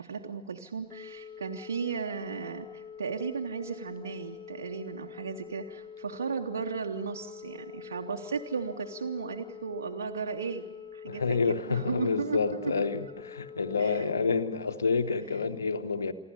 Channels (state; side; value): inverted; both; correlation -0.67